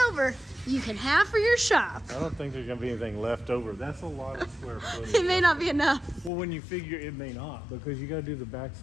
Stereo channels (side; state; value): right; drops out; at 6.3 s